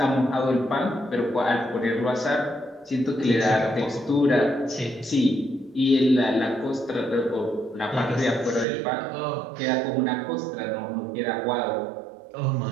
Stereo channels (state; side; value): drops out; left; at 8.7 s